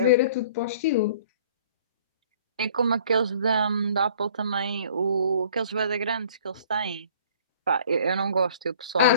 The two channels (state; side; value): inverted; both; correlation -0.53